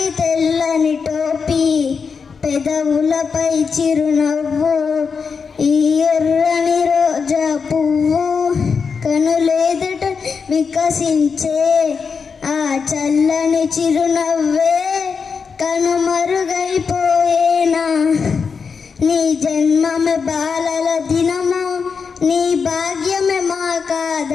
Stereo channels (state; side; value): quieter; right; 5.6 dB